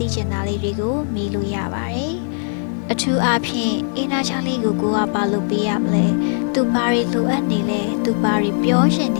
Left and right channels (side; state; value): right; silent; 63 dB below the other